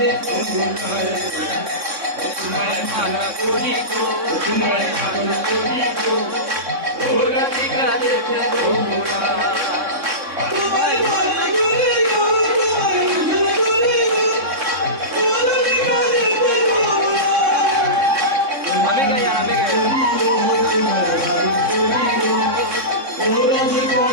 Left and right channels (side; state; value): left; late; 3.6 ms